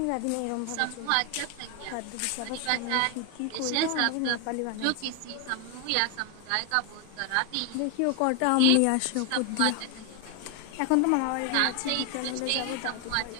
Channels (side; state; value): both; different; correlation 0.01